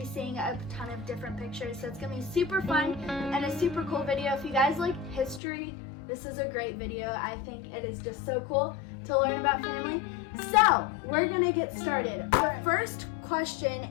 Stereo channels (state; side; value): drops out; right; at 5.4 s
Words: seeing a ton of different pictures. So it's going to be super fun and a super cool video. If you guys like history, this is a great video. I think it is just so cool to learn about family. So we're going to get started. Our first